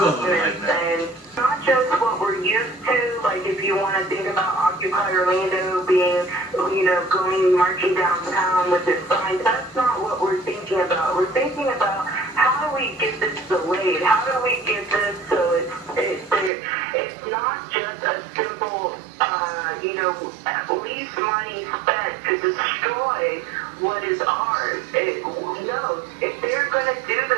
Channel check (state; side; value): drops out; left; at 16.5 s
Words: and not just what we're used to, like if you want to think about Occupy Orlando being, going marching downtown with their signs, that's not what we're thinking about. We're thinking about how do we get this delayed? How do we get this so it's not just a simple, lease money spent to destroy what is ours. No, if they're going to do